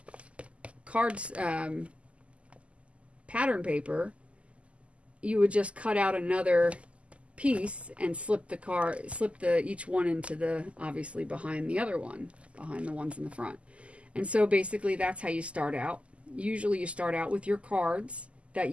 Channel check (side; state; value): left; late; 0.059 ms